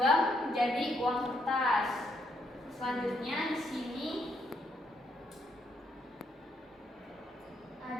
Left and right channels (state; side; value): normal; both; correlation 0.74